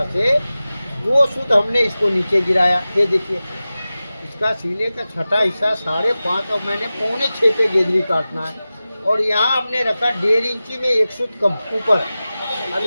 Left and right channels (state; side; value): inverted; both; correlation -0.96